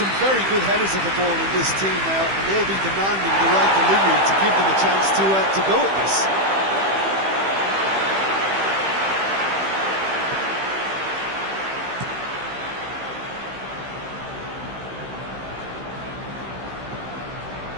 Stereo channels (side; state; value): left; late; 15 ms